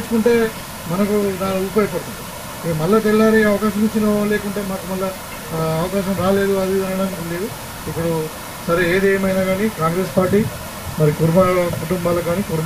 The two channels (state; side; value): identical; both; correlation 1.00